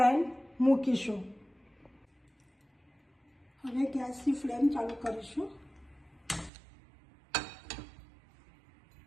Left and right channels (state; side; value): drops out; left; at 6.5 s